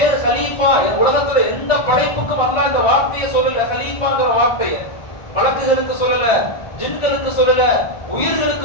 கலீஃபா. உலகத்துல எந்த படைப்புக்கும் அல்லாஹ் இந்த வார்த்தையை சொல்லல, கலீஃபாங்கிற வார்த்தையை. மலக்குகளுக்கு சொல்லல, ஜின்களுக்கு சொல்லல,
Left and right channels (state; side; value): late; right; 1.4 ms